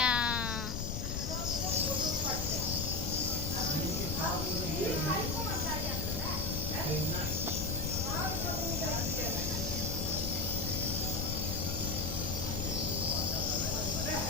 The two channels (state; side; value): noise; left; rumble, 2 dB below the sound